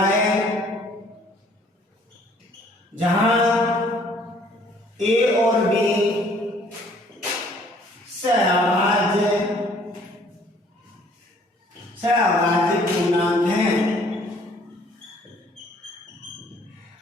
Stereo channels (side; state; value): both; normal; correlation 0.59